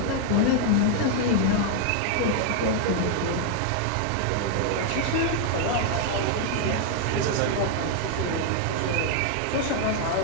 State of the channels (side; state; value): both; different; correlation 0.00